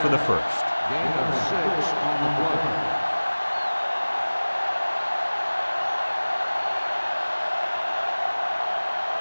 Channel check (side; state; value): both; inverted; correlation -1.00